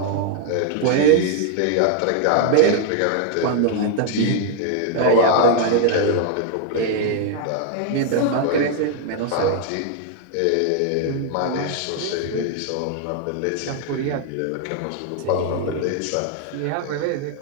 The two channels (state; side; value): different; both; correlation 0.00